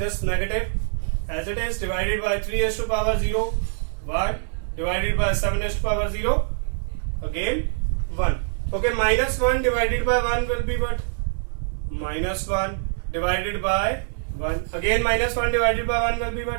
negative as it is divided by 3 raised to the power 0, 1 divided by 7 raised to the power 0, again 1. Okay, minus 1 divided by 1 will be what? Minus 1 divided by 1. Again minus 1 divided by 1 will be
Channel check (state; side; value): silent; left; 62 dB below the other